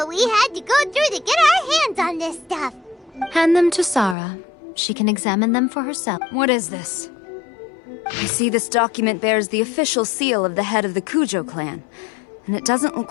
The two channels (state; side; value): drops out; right; at 4.2 s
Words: we had to go through to get our hands on this stuff. Hand them to Sarah. She can examine them for herself. What is this? I see this document bears the official seal of the head of the Kujo clan, and it doesn't